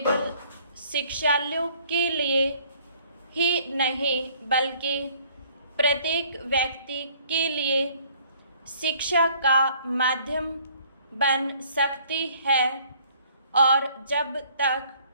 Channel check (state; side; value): inverted; both; correlation -0.59